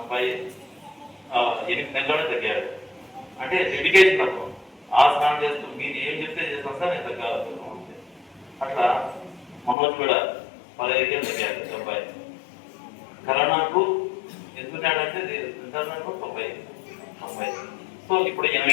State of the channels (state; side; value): drops out; right; at 9.8 s